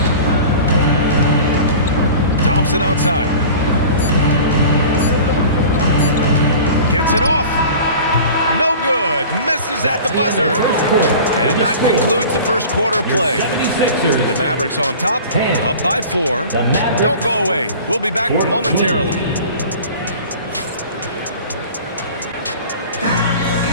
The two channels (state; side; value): inverted; both; correlation -0.40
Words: Thompson outside. Gets it off. No good. Misses at the buzzer. And that concludes the first quarter play. The Mavericks on top, up by 4. Don't go away. We'll be back momentarily.